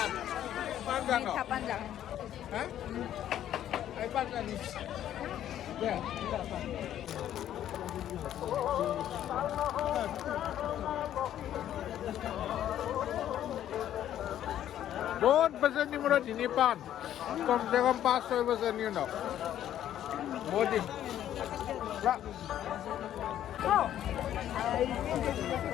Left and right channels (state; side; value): quieter; right; 11.3 dB